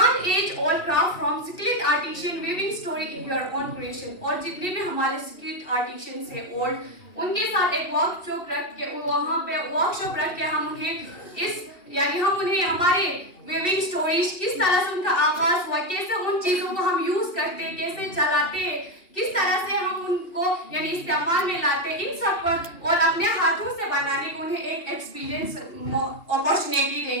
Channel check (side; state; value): right; late; 2.8 ms